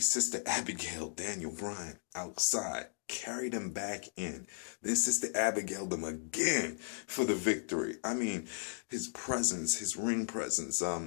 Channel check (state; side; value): silent; right; digital silence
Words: Abigail Daniel Bryan outside, carried him back in. Then Sister Abigail him again for the victory. I mean, his presence, his ring presence,